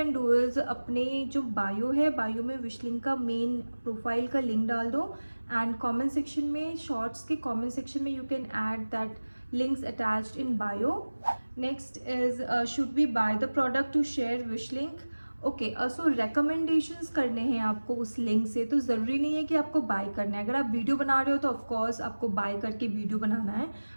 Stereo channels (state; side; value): inverted; both; correlation -1.00